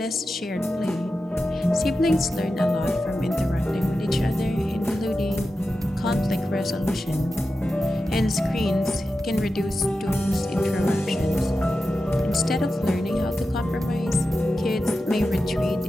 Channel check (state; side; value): normal; both; correlation 0.91